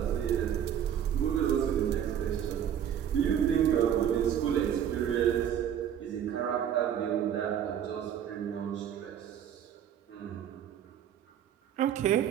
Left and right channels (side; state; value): left; quieter; 9.5 dB